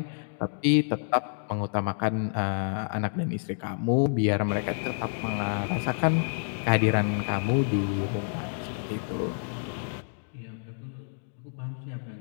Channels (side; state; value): right; silent; digital silence